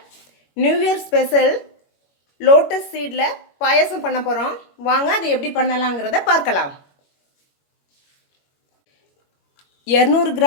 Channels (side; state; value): right; late; 21 ms